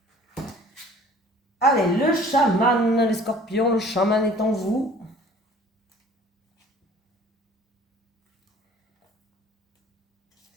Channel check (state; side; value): normal; both; correlation 0.50